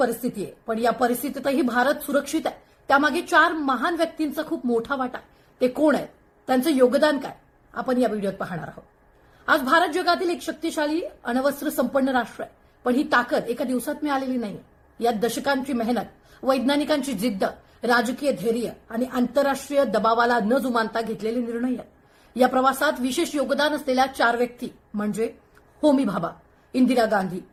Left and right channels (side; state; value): both; identical; correlation 1.00